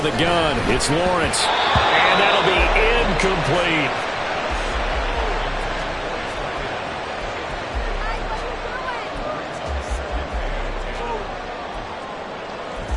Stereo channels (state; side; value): identical; both; correlation 1.00